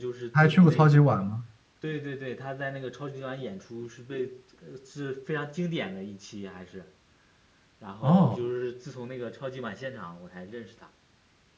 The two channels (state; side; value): identical; both; correlation 1.00